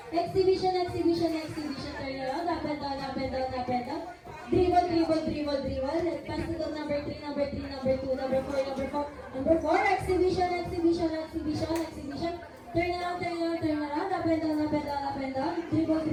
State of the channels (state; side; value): identical; both; correlation 1.00